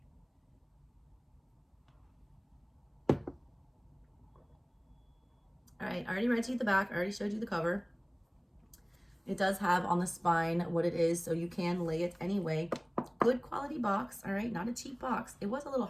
All right, I already read to you the back. I already showed you the cover. It does have on the spine what it is, so you can lay it anyway. Good quality box, all right? Not a cheap box. It was a little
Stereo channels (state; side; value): identical; both; correlation 1.00